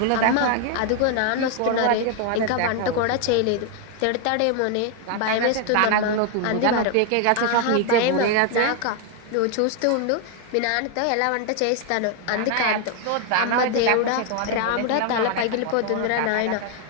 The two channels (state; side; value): different; both; correlation 0.00